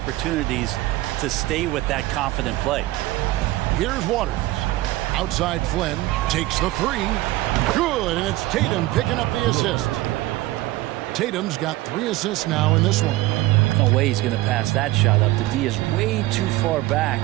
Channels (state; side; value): quieter; left; 17.8 dB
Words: to stay with that confident play. Here's Waters. Outside Flynn takes the 3. Good, and it's Tatum picking up the assist. Tatum's got 3 assists now in this one. No way he's going to pass that shot up. The D is way too far back